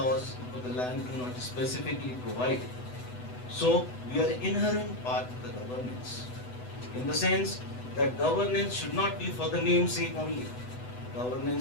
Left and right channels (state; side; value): late; right; 8.0 ms